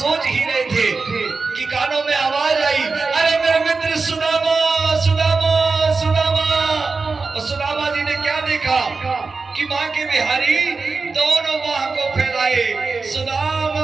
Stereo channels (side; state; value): left; quieter; 4.2 dB